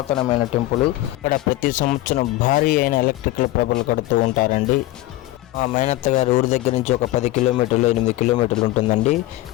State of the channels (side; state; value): right; quieter; 16.9 dB